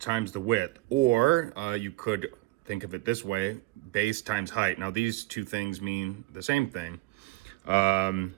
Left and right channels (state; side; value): quieter; left; 20.2 dB